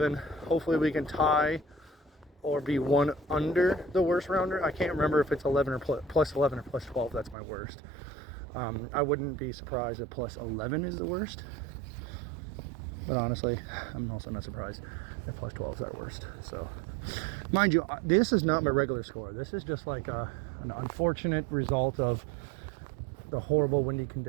hopefully we can tie or be one under the worst rounder. I can't remember if it's 11 or plus 11 or plus 12. That's my worst. I wouldn't be surprised if plus 11 is the worst, but honestly, I'm also not surprised if plus 12 is our worst. So, mind you, this is not my regular score. This is just like an unfortunate result of the horrible windy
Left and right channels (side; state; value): left; drops out; at 7.4 s